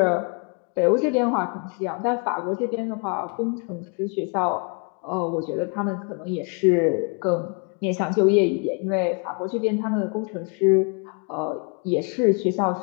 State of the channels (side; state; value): right; quieter; 37.5 dB